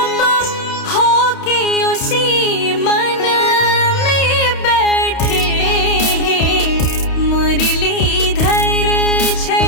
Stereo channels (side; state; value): right; late; 31 ms